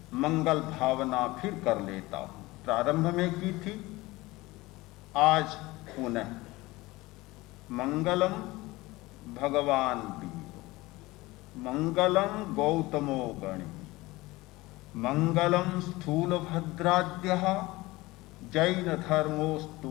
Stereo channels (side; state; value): right; quieter; 20.4 dB